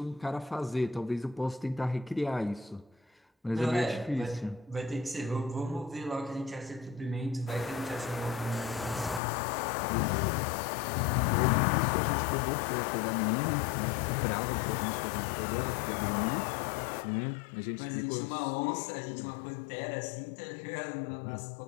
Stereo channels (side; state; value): right; drops out; at 9.2 s